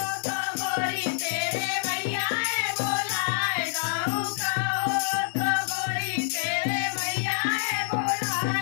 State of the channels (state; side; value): silent; right; 60 dB below the other